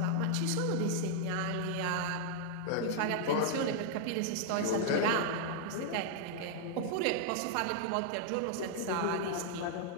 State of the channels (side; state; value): both; different; correlation -0.01